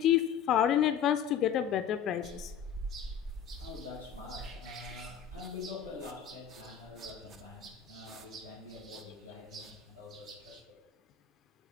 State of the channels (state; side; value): quieter; right; 8.5 dB